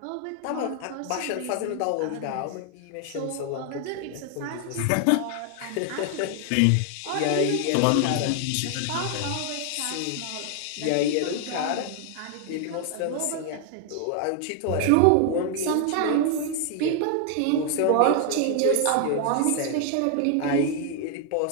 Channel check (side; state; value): both; different; correlation 0.00